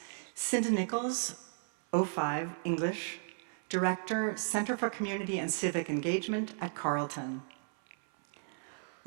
Cinda Nichols, 05, English, Director, Center for Community and Civic Engagement at Carleton.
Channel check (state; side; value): silent; left; 55 dB below the other